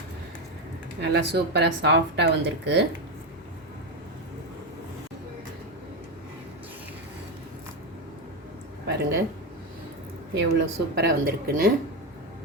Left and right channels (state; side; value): normal; both; correlation 0.11